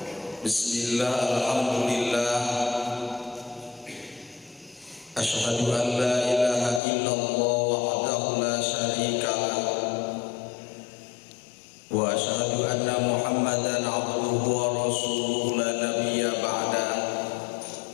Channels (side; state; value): right; drops out; at 6.8 s